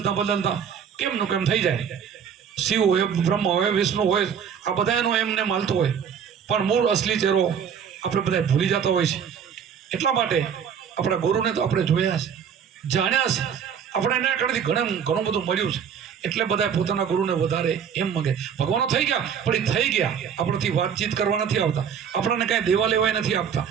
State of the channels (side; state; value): left; quieter; 7.7 dB